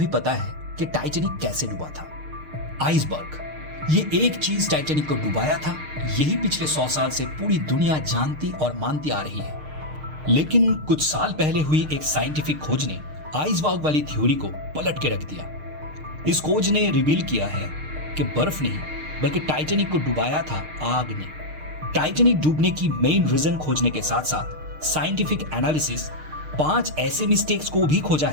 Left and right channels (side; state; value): left; late; 6.5 ms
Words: पता है कि टाइटैनिक कैसे डूबा था। आइसबर्ग, ये एक चीज टाइटैनिक को डुबाया था, यही पिछले 100 साल से पूरी दुनिया जानती और मानती आ रही है। लेकिन कुछ साल पहले हुई एक साइंटिफिक खोज ने आइसबर्ग वाली थ्योरी को पलट के रख दिया। इस खोज ने रिवील किया है कि बर्फ नहीं बल्कि टाइटैनिक को डुबाया था आग ने। टाइटैनिक डूबने की मेन रीजन खोजने के साथ साथ साइंटिफिक एनालिसिस 5 ऐसे मिस्टेक्स को भी खोजा